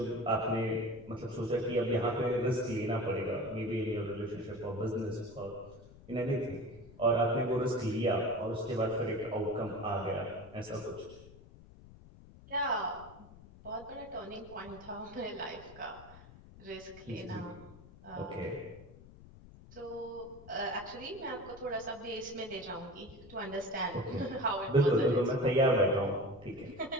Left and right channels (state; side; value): noise; left; rumble, 20 dB below the sound